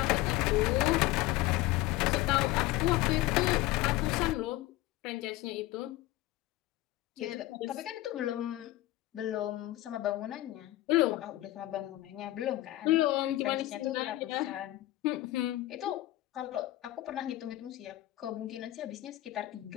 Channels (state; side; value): quieter; right; 16.6 dB